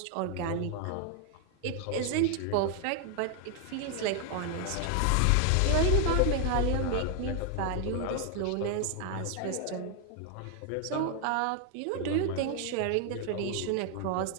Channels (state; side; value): different; both; correlation 0.00